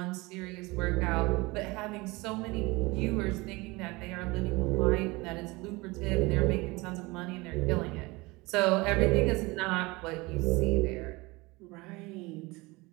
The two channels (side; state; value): left; quieter; 23.5 dB